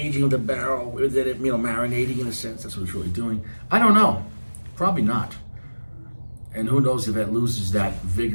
of the barrel, with it, marinating in a sense. That's what it's really doing. I don't know. Probably not. And who knows if it loses that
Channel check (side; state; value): both; inverted; correlation -1.00